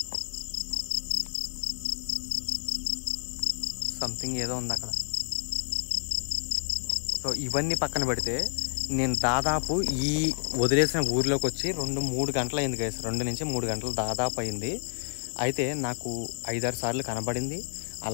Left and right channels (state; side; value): silent; right; 58 dB below the other